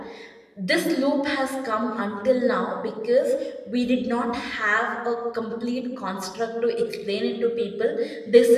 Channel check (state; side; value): identical; both; correlation 1.00